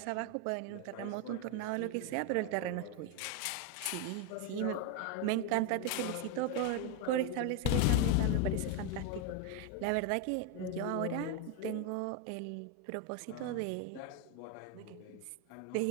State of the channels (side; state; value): both; different; correlation 0.01